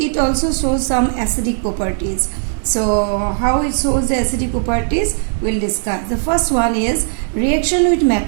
also shows some acidic properties. So how it shows the acidic properties we'll discuss. The first one is reaction with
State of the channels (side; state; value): left; silent; digital silence